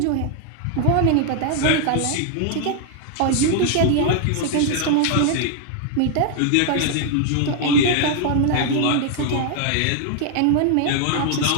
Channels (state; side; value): different; both; correlation 0.00